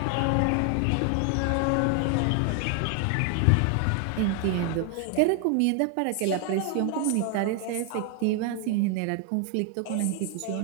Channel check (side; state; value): both; different; correlation 0.00